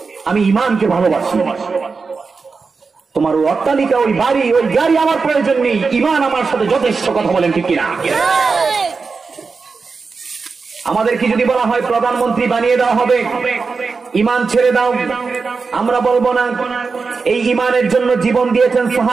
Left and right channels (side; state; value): left; quieter; 4.7 dB